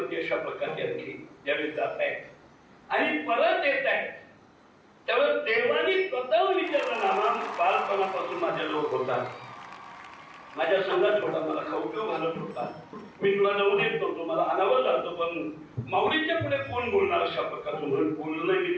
अशा प्रकारचे आणखी ज्यावेळी जात आहेत आणि परत येत आहेत त्यावेळेस देवानी स्वतः विचारलं नामा बालपणापासून माझ्या लोक होता माझ्या संघात होता मला खाऊ पिऊ घालत होता मी तुला जाऊ देत नव्हतो मला अनावर जातो पण माऊलीच्या पुढे कोण बोलणार अशा प्रकारचं म्हणून बोललं नाही. मी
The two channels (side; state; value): both; identical; correlation 1.00